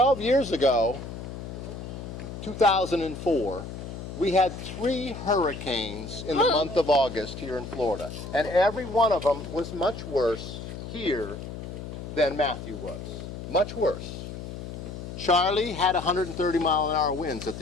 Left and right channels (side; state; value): left; noise; hum, 9 dB below the sound